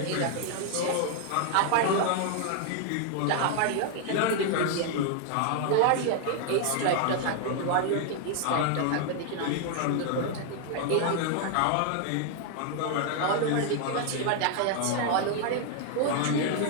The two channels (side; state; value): both; different; correlation 0.00